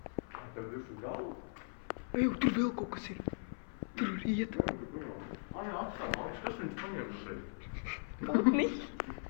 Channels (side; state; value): right; silent; 52 dB below the other